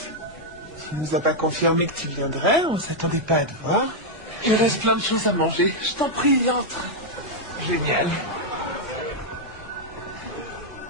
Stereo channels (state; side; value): normal; both; correlation -0.02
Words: Tu nous as pas confirmé que tu viendrais, on s'attendait pas à te voir. Il reste plein de choses à manger. Je t'en prie, entre. Génial.